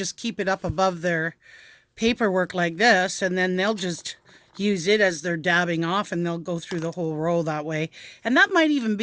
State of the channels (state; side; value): identical; both; correlation 1.00